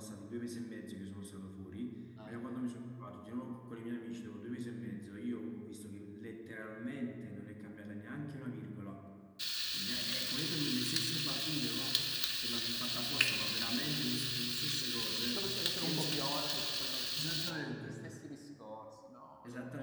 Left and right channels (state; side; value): identical; both; correlation 1.00